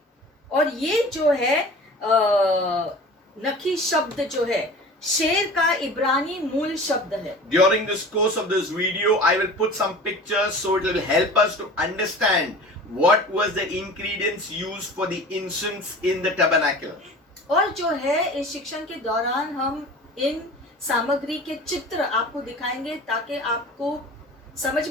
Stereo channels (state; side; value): normal; both; correlation 0.39